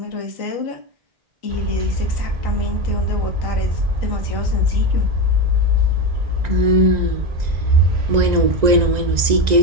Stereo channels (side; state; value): left; late; 1.9 ms